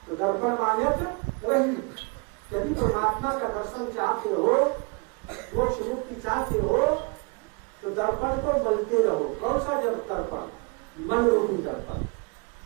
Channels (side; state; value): left; quieter; 32.4 dB